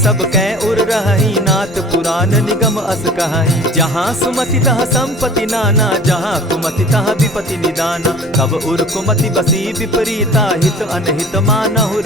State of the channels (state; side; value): normal; both; correlation 0.44